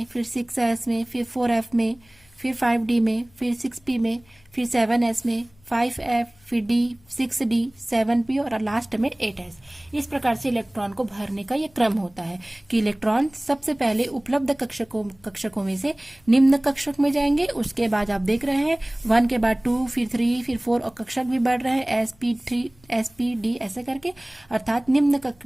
फिर 6s में, फिर 4f में, फिर 5d में, फिर 6p में, फिर 7s में, 5f, फिर d, 6d, 7p और लास्ट में 8s। इस प्रकार से इलेक्ट्रॉन को भरने का ये क्रम होता है कि इलेक्ट्रॉन सबसे पहले उपलब्ध कक्षकों में से निम्न कक्षक में जाएंगे। उसके बाद आप देख रहे हैं 1 के बाद 2, फिर 3, फिर 4 और कक्षक भी बढ़ रहे हैं sp3, sp, d ऐसे करके, अर्थात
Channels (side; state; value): left; noise; hum, 30 dB below the sound